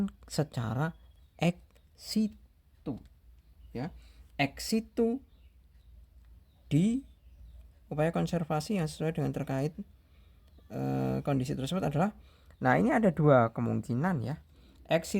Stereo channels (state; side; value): identical; both; correlation 1.00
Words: secara ex situ. Ya, ex situ di upaya konservasi yang sesuai dengan terkait kondisi tersebut adalah, nah ini ada 2 kemungkinan ya. Ex